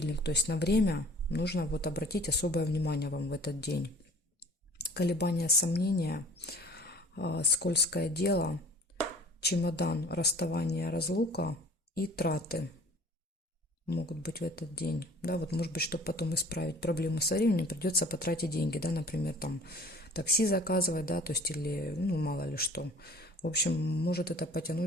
то есть на время нужно вот обратить особое внимание вам в этот день. Колебания, сомнения, скользкое дело, чемодан, расставание, разлука и траты могут быть в этот день. Да, вот может быть, чтобы потом исправить проблему со временем, придется потратить деньги, да, например, там такси заказывать, да, то есть или, ну, мало ли что. В общем, может это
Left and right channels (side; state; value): both; normal; correlation 0.48